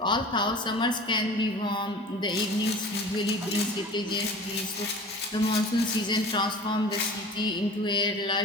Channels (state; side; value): normal; both; correlation 0.40